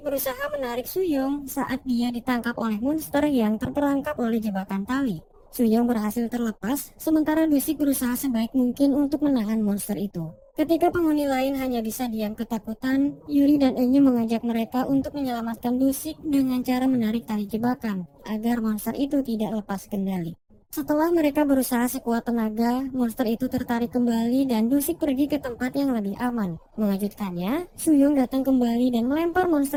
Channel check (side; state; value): both; identical; correlation 1.00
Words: menarik Suyong saat dia ditangkap oleh monster yang terperangkap oleh jebakan tali. Suyong berhasil terlepas, sementara Dusik berusaha sebaik mungkin untuk menahan monster itu. Ketika penghuni lain hanya bisa diam ketakutan, Yuri dan Enyu mengajak mereka untuk menyelamatkan Dusik dengan cara menarik tali jebakan, agar monster itu tidak lepas kendali. Setelah mereka berusaha sekuat tenaga, monster itu tertarik kembali dan Dusik pergi ke tempat yang lebih aman. Mengejutkannya, Suyong datang kembali dan melempar monster